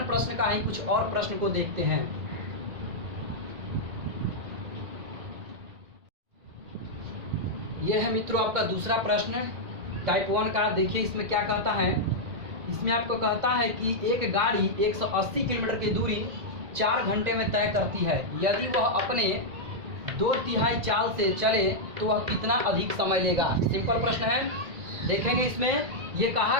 प्रश्न का ही कुछ और प्रश्न को देखते हैं। यह है मित्रों आपका दूसरा प्रश्न टाइप 1 का। देखिए इसमें क्या कहता है। इसमें आपको कहता है कि एक गाड़ी 180 किलोमीटर की दूरी 4 घंटे में तय करती है। यदि वह अपने 2/3 चाल से चले तो वह कितना अधिक समय लेगा। सिंपल प्रश्न है। देखेंगे इसमें ये कहा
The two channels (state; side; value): late; left; 1.9 ms